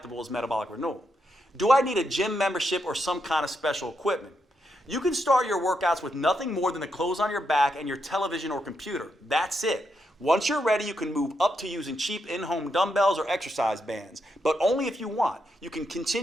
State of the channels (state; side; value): normal; both; correlation 0.82